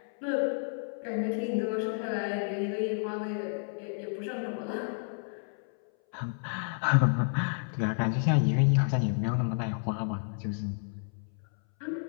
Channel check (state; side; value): silent; right; 57 dB below the other